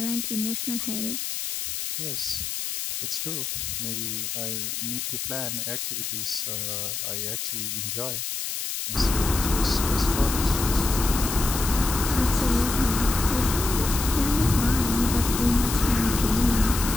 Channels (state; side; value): noise; left; hiss, 4 dB below the sound